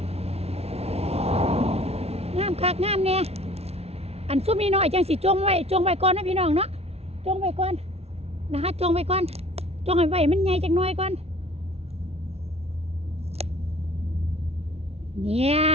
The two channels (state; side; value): late; left; 0.30 ms